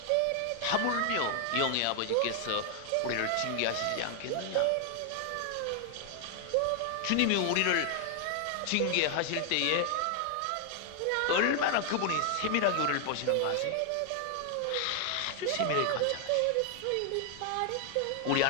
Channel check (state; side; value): different; both; correlation 0.00